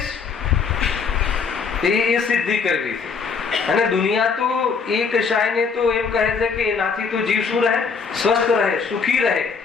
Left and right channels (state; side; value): quieter; right; 5.5 dB